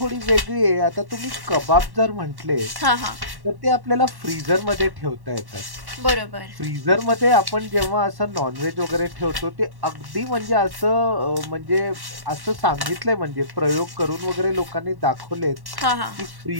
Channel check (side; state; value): left; late; 1.1 ms